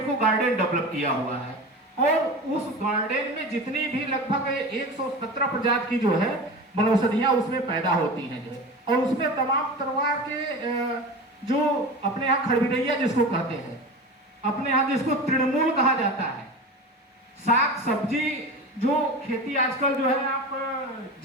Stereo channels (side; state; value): both; normal; correlation 0.30